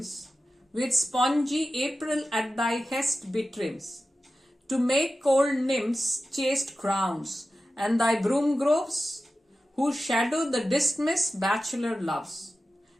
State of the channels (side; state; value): both; normal; correlation 0.94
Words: with spongy April at thy hest betrims, to make cold nymphs chaste crowns, and thy broom groves, whose shadow the dismissed bachelor loves,